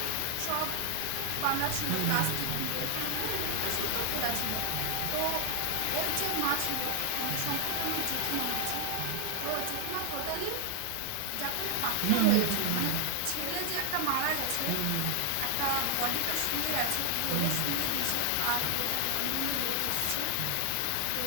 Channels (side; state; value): both; different; correlation 0.00